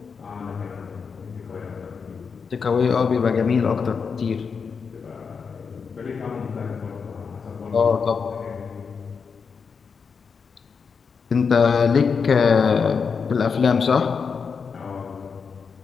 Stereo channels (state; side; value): quieter; right; 5.7 dB